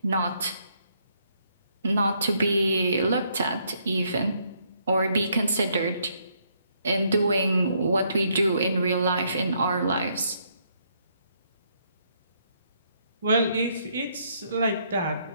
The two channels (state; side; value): inverted; both; correlation -0.72